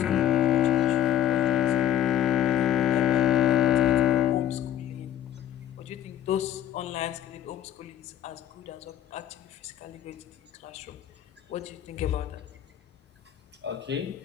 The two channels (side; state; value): right; quieter; 11.1 dB